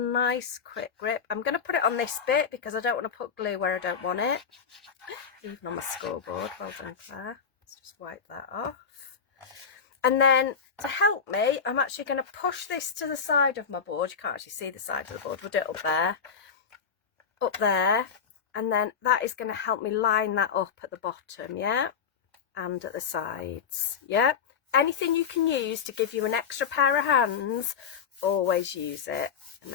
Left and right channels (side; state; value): right; quieter; 6.7 dB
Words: quick grip. I'm going to put it on this bit because I don't want to put glue where I don't want it. Even on my scoreboard. Well done, Claire. Let's just wipe that off. And then to help me, I'm actually going to push this to the side of my board. You can't actually see the side of the board. We'll do it up there. Up there. And then that is going to help me line that up at the bottom, yeah? And at the sides, yeah? Anything you can use to give you an extra pair of hands, always use it and